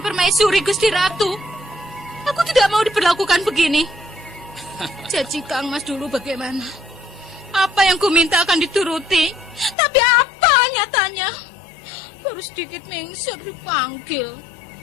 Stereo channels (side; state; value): right; drops out; at 9.8 s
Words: permaisuri Gusti Ratu. Aku tidak mau diperlakukan begini. Janji Kang Mas dulu bagaimana? Apa yang ku minta akan dituruti. Tapi apa nyatanya? Baru sedikit mengsur dipanggil.